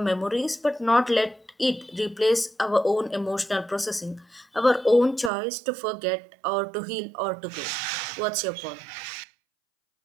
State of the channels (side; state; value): left; drops out; at 5.3 s